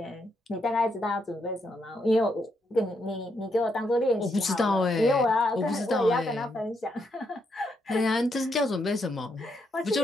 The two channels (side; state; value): both; normal; correlation 0.79